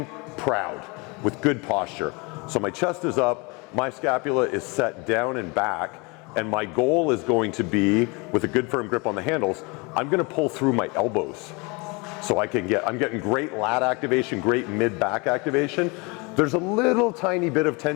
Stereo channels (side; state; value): right; quieter; 28.6 dB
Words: proud with good posture. So my chest is up, my scapula is set down and back, and my goal is going to be, with a good firm grip on the handles, I'm going to pull through my elbows. So I'm getting great lat activation, great mid-back activation. There's a little tiny bit of